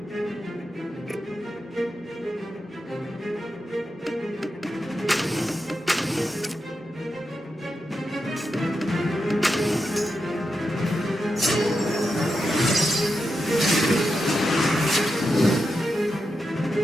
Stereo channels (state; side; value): normal; both; correlation 0.87